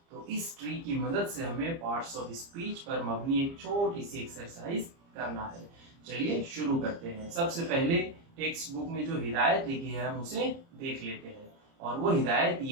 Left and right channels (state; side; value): late; left; 30 ms